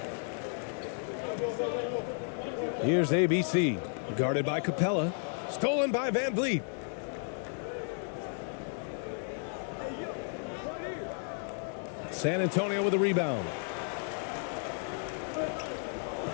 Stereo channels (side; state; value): right; silent; 56 dB below the other